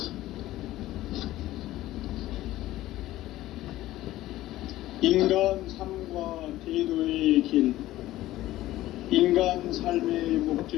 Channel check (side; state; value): right; quieter; 15.5 dB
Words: 인간 삶과 대도의 길. 인간 삶의